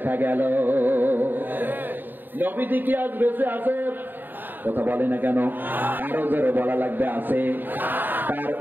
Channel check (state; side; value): late; left; 0.092 ms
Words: গেল। নবীজি কি আজ বেঁচে আছে? কথা বলে না কেন? আরো জোরে বলা লাগবে আছে। তার